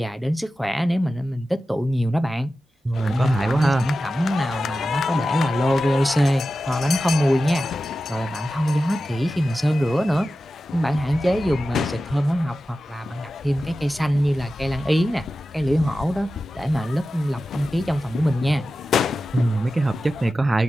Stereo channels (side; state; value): both; normal; correlation 0.93